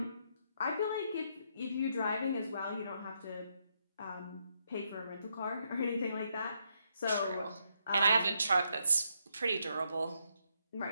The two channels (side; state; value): both; inverted; correlation -0.77